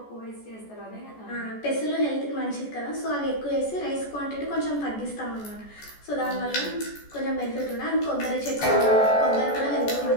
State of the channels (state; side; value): late; right; 14 ms